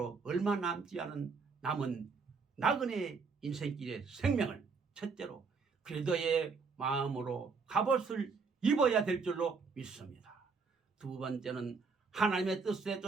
얼마 남지 않은 남은 나그네 인생길의 생명을 첫째로 그리스도의 마음으로 갑옷을 입어야 될 줄로 믿습니다. 두 번째는 하나님의 뜻에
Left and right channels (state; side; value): quieter; left; 4.8 dB